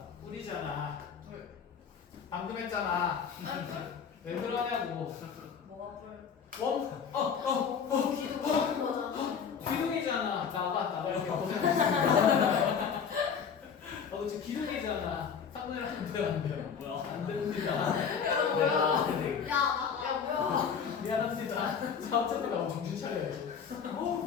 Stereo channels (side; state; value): right; quieter; 6.8 dB